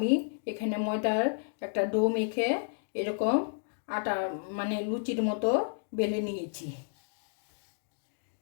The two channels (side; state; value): right; silent; digital silence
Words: এখানে ময়দার একটা ডো মেখে এরকম আটা মানে লুচির মতো বেলে নিয়েছি।